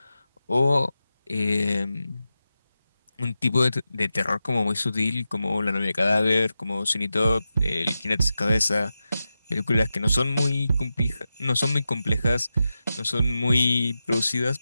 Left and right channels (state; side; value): inverted; both; correlation -0.91